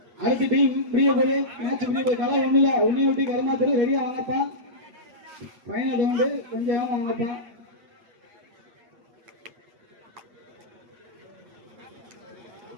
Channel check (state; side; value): late; left; 8.8 ms